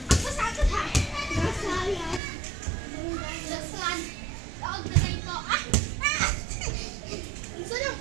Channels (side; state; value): left; drops out; at 2.2 s